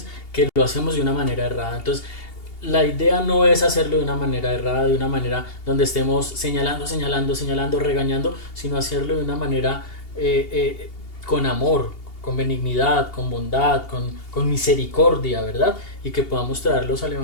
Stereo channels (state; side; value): late; right; 2.8 ms